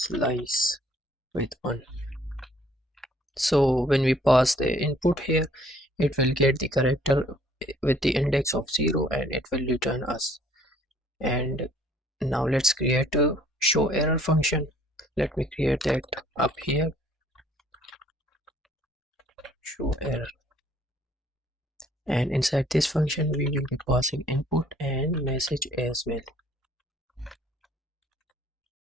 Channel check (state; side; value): normal; both; correlation 0.59